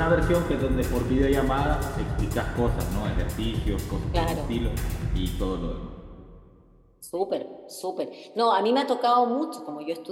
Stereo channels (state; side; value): identical; both; correlation 1.00